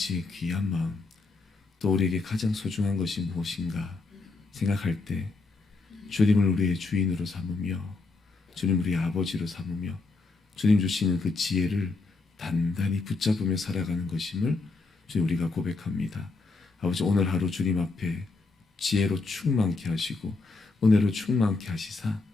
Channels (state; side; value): quieter; right; 3.8 dB